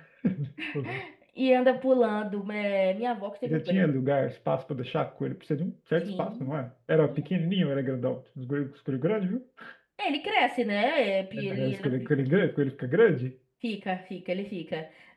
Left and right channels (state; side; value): identical; both; correlation 1.00